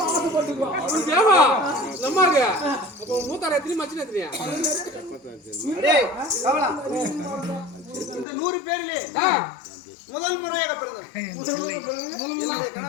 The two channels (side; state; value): right; drops out; at 8.2 s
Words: டேய் இந்த 100 பேர்ல முதல் முறையாக பிறந்தவன்.